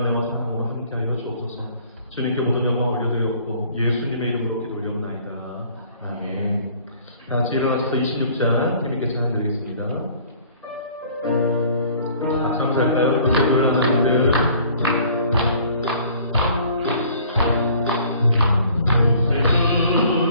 사랑으로 함께하여 주옵소서. 주님께 모든 영광 올려드리옵고 예수님의 이름으로 기도 올려옵나이다. 아멘. 다 같이 일어나셔서 26장 주님께 찬양 드리겠습니다. 같이 감사할까요? 기도를 하는 분들.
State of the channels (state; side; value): inverted; both; correlation -0.54